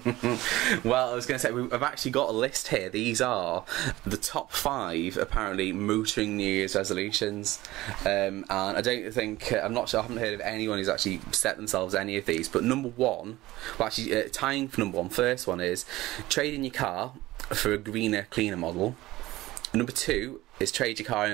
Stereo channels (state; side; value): quieter; left; 17.7 dB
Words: Well, I was going to say, I've actually got a list here. These are the top 5, apparently, motoring New Year's resolutions. And I don't think, I'm not sure, I haven't heard of anyone who's actually set themselves any of these. But number 1, well, actually, tying for number 1, first one is trade in your car for a greener, cleaner model. Number 2 is trade your car